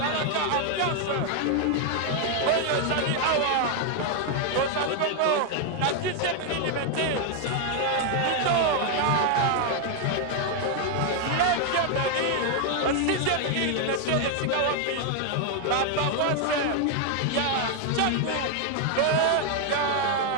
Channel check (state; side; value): different; both; correlation 0.00